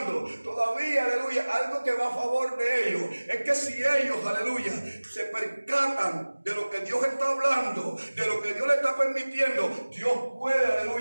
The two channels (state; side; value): inverted; both; correlation -1.00